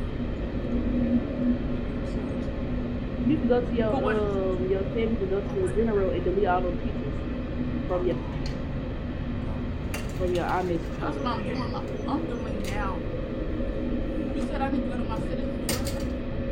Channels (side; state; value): both; identical; correlation 1.00